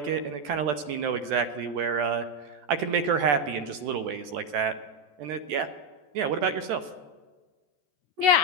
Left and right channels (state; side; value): late; left; 14 ms